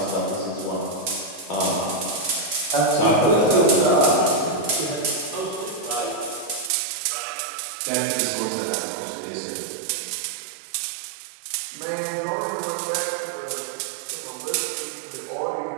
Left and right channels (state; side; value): drops out; left; at 6.7 s